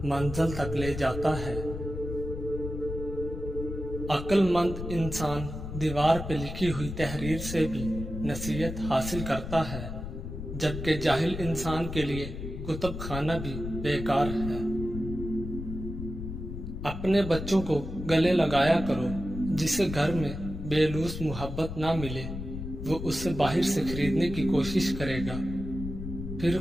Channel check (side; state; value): left; noise; rumble, 7 dB below the sound